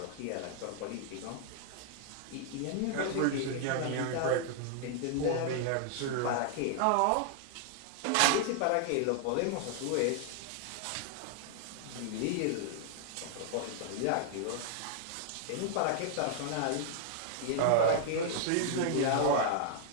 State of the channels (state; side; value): different; both; correlation 0.00